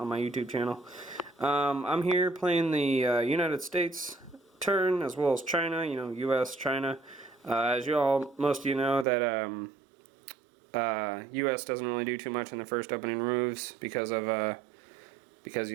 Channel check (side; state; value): left; drops out; at 9.1 s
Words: my YouTube channel. I'm here playing the United States turn as well as China. You know, U.S. China. As most of you know, that U.S. doesn't really do too much in the first opening moves because